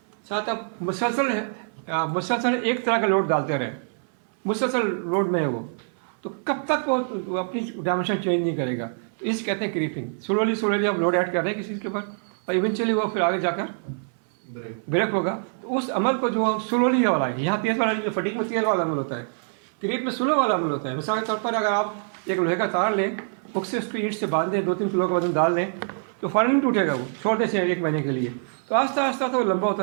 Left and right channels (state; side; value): silent; left; 59 dB below the other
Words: साथ आप मुसलसल एक तरह का लोड डालते रहें, मुसलसल लोड में है वो, तो कब तक वो अपनी डायमेंशन चेंज नहीं करेगा। तो इसे कहते हैं क्रीपिंग। स्लोली आप लोड ऐड कर रहे हैं किसी के ऊपर और इवेंचुअली वो फिर आगे जाकर ब्रेक होगा। तो उस अमल को जो हम स्लोली वाला है, यहाँ तेज़ वाला जो फटीक में तेज़ वाला अमल होता है, क्रीप में स्लो वाला अमल होता है। मिसाल के तौर पर अगर आप एक लोहे का तार लें, हुक से उसको ईंट से बांध दें, 2-3 किलो का वजन डाल दें, तो फ़ौरन नहीं टूटेगा, वो छोड़ दें 1 महीने के लिए, तो आस्ता आस्ता तो वो लंबा